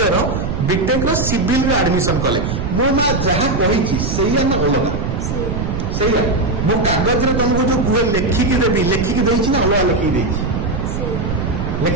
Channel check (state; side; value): noise; right; rumble, 3 dB below the sound